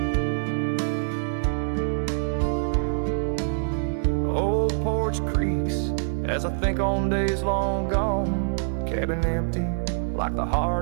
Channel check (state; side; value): silent; left; digital silence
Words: Old porch creaks as I think on days long gone, cabin empty like the